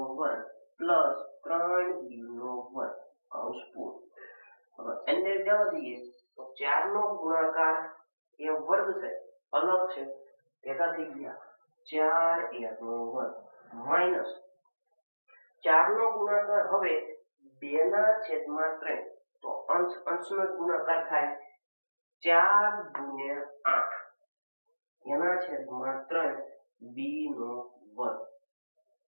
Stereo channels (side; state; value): both; inverted; correlation -1.00